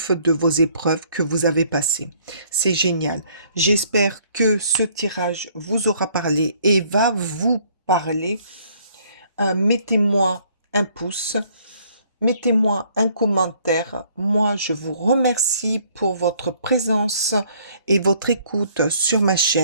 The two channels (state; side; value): inverted; both; correlation -0.61